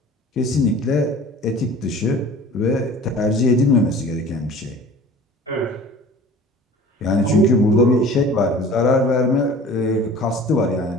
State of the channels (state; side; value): normal; both; correlation 0.44